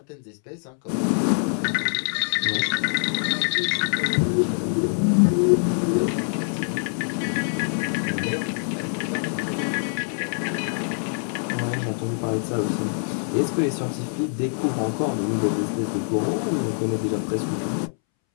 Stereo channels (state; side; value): silent; right; 62 dB below the other